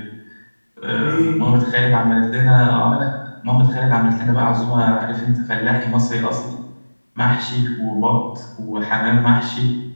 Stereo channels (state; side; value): inverted; both; correlation -1.00